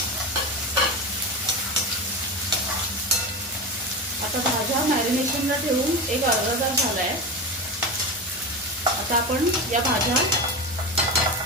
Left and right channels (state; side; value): normal; both; correlation 0.22